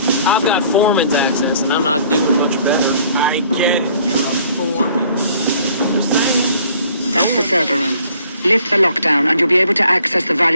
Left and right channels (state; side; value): inverted; both; correlation -0.58